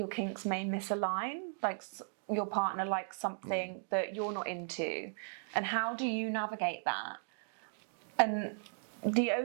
kinks may misalign, like your partner likes something that you're not into. And how do you navigate that? And the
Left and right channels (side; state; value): left; silent; digital silence